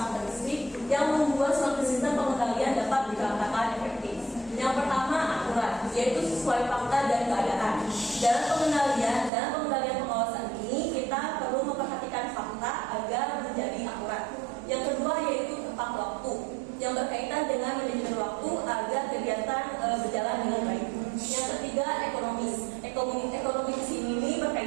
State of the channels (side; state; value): left; drops out; at 9.3 s